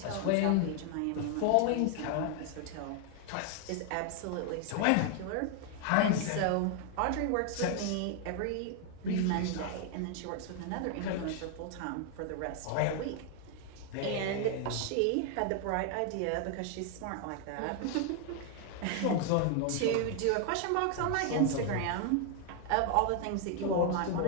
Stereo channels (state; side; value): different; both; correlation 0.00